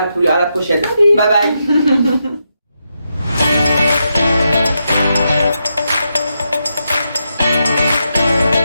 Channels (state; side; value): inverted; both; correlation -0.84